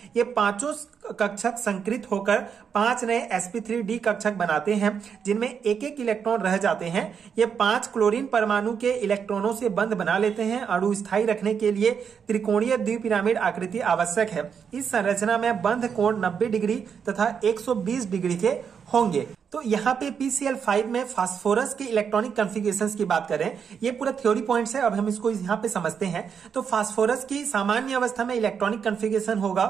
ये पांचों कक्षक संकृत होकर 5 नए sp3d कक्षक बनाते हैं जिनमें एक एक इलेक्ट्रॉन रह जाते हैं। ये 5 क्लोरीन परमाणु के इलेक्ट्रॉनों से बंध बना लेते हैं। अणु स्थायी रखने के लिए त्रिकोणीय द्विपिरामिड आकृति आवश्यक है। इस संरचना में बंध कोण 90 डिग्री तथा 120 डिग्री के होंगे। तो यहाँ पे PCl5 में फास्फोरस के इलेक्ट्रॉनिक कॉन्फ़िगरेशंस की बात करें, ये पूरा थ्योरी पॉइंट्स है। अब हम इसको यहाँ पे समझते हैं। तो फास्फोरस की सामान्य अवस्था में इलेक्ट्रॉनिक कॉन्फ़िगरेशन होगा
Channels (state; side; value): quieter; left; 7.0 dB